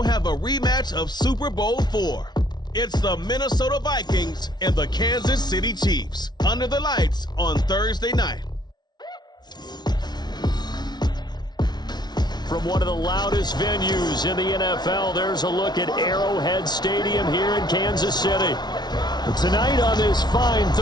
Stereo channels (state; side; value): late; right; 0.20 ms